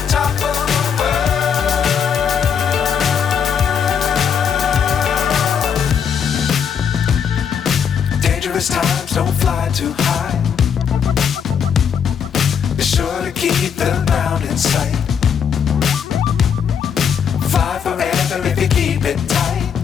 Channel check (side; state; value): right; quieter; 7.4 dB